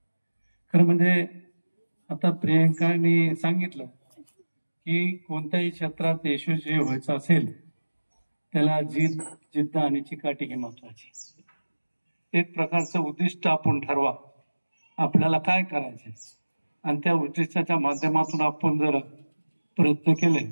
खरं म्हणजे आता प्रियंकाने सांगितलं की कोणत्याही क्षेत्रात यशस्वी व्हायचं असेल त्याला जिद्द आणि चिकाटी ही महत्वाची. एक प्रकारचं उद्दिष्ट आपण ठरवा, आपल्याला काय करायचे आणि त्या उद्दिष्टाच्या माध्यमातून आपण जर प्रयत्न केले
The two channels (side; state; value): both; inverted; correlation -1.00